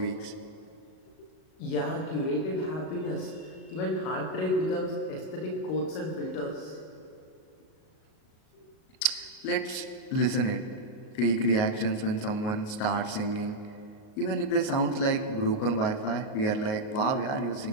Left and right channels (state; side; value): late; right; 38 ms